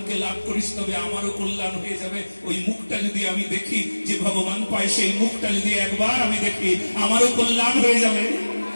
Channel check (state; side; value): inverted; both; correlation -1.00